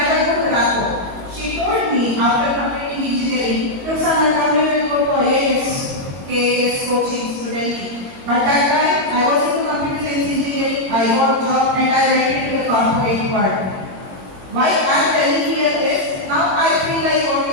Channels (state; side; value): late; left; 21 ms